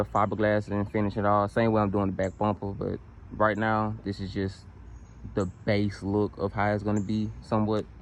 fiberglassing and finish it all. Same way I'm doing the back bumper, but right now, this is just the base look of how it's going to be somewhat.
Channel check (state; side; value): identical; both; correlation 1.00